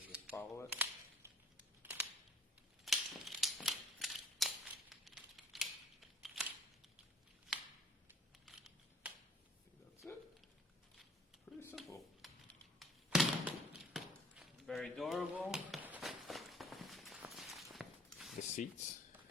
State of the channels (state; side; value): normal; both; correlation 0.53